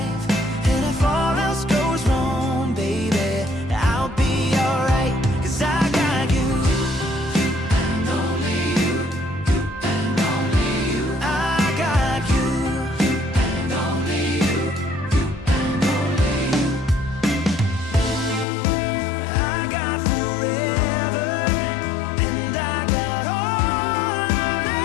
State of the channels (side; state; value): right; drops out; at 18.4 s